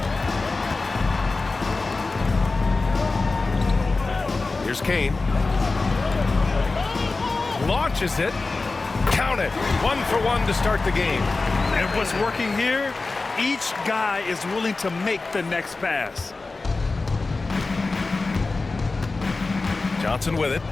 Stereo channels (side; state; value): right; quieter; 3.7 dB